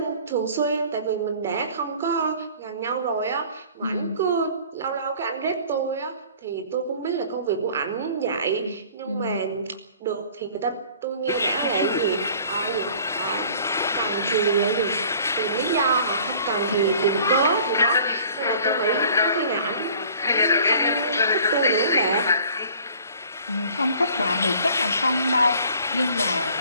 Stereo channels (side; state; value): both; inverted; correlation -0.50